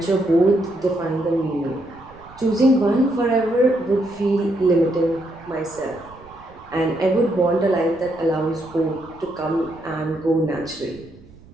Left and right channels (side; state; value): right; noise; rumble, 23 dB below the sound